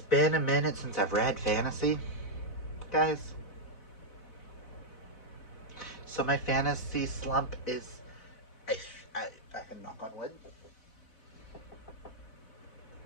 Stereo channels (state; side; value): late; right; 4.0 ms